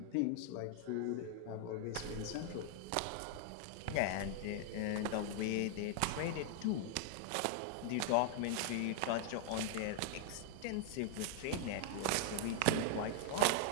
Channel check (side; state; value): both; different; correlation 0.00